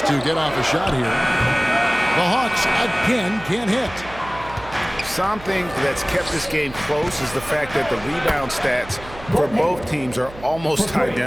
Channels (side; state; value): right; noise; hum, 17 dB below the sound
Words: to get off a shot here. The Hawks again can't hit. Something that's kept this game close is the fact that the rebound stats for both teams are almost